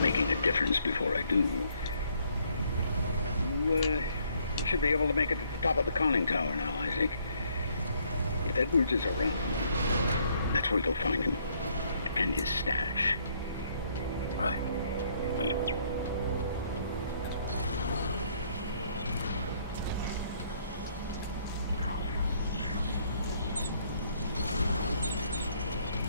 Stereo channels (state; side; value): inverted; both; correlation -0.67